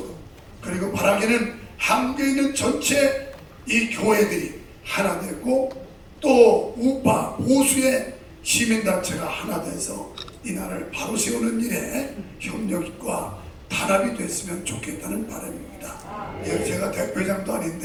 그리고 바라기는 한국에 있는 전체 이 교회들이 하나 되고 또 우파 보수의 시민단체가 하나 돼서 이 나라를 바로 세우는 일에 협력과 단합이 됐으면 좋겠다는 바람입니다. 제가 대표장도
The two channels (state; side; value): identical; both; correlation 1.00